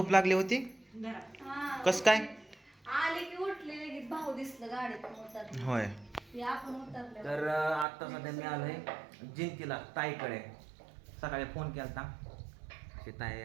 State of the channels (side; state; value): left; drops out; at 7.9 s